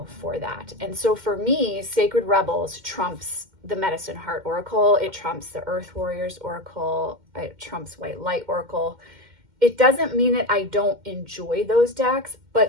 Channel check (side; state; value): left; late; 2.1 ms